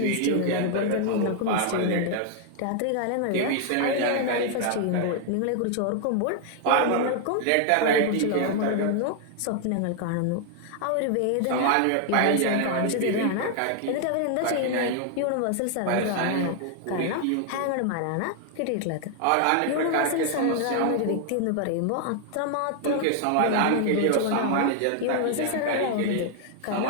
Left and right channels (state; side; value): different; both; correlation 0.00